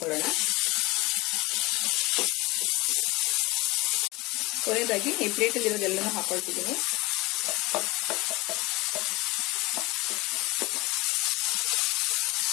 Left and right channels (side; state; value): right; quieter; 22.3 dB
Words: ಕೊನೆಯದಾಗಿ ಈ ಪ್ಲೇಟಲ್ಲಿ ಇರೋದೆಲ್ಲನೂ ಹಾಕೊಳ್ತಿದ್ದೀನಿ.